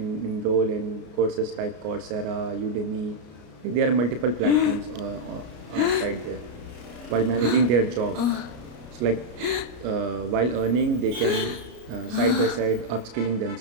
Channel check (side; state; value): left; late; 33 ms